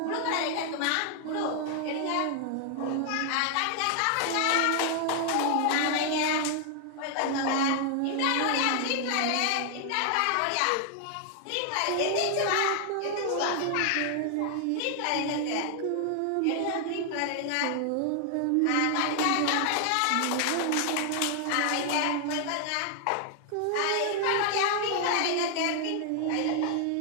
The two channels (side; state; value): both; different; correlation 0.00